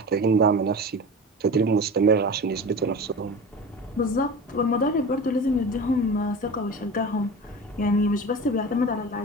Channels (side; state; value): both; normal; correlation 0.32